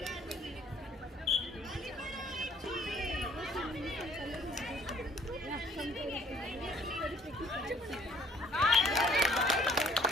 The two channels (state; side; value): normal; both; correlation 0.58